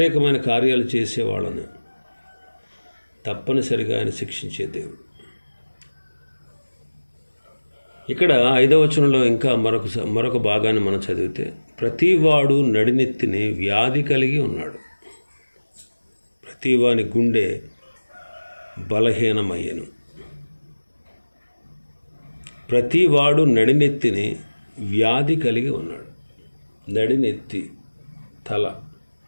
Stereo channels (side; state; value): both; inverted; correlation -1.00